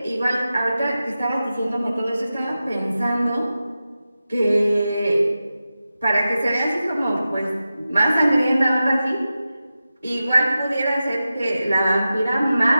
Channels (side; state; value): both; inverted; correlation -0.93